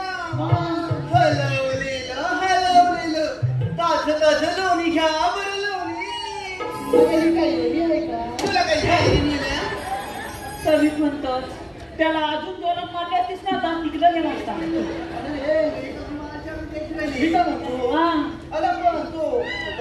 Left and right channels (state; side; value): identical; both; correlation 1.00